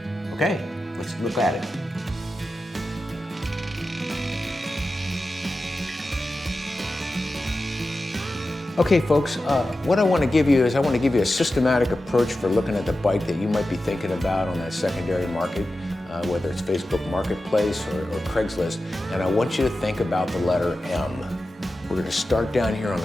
Okay, let's look at it. Okay, folks, what I want to give you is a systematic approach for looking at the bike that you might be thinking about on that secondary market, whether it's Facebook Marketplace or Craigslist, and I want you to think about the letter M. We're going to start down here on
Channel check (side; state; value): both; normal; correlation 0.93